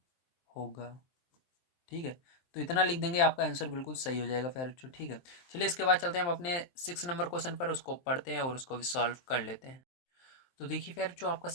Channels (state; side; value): late; right; 23 ms